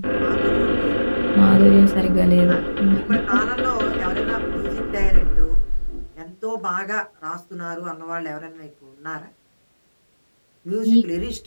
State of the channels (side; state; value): both; inverted; correlation -1.00